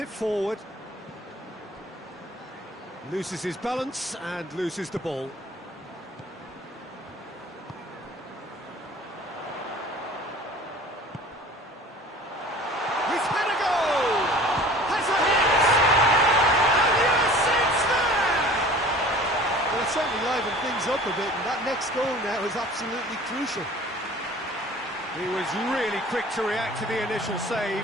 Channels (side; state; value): both; normal; correlation 0.45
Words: forward. Loses his balance and loses the ball. Certainly livened things up a bit, and that next goal now is absolutely crucial. He was really quick to react to the initial